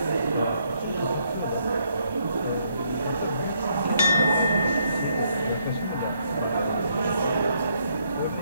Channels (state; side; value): inverted; both; correlation -0.73